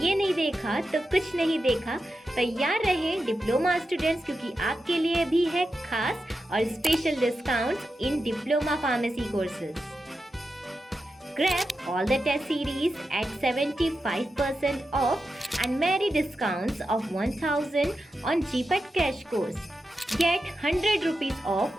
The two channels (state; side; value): normal; both; correlation 0.89